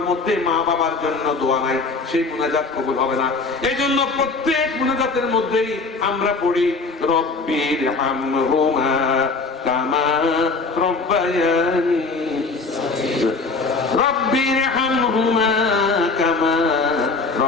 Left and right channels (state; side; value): quieter; right; 4.0 dB